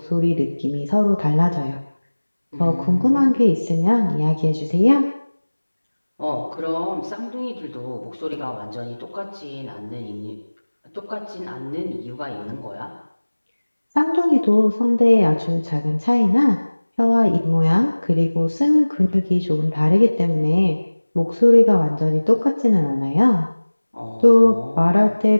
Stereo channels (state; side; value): inverted; both; correlation -1.00